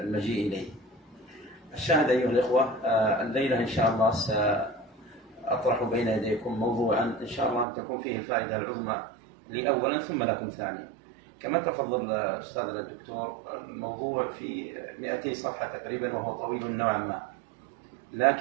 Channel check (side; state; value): left; drops out; at 7.7 s